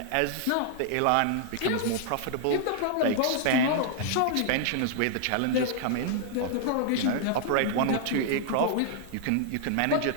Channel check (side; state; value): both; different; correlation -0.01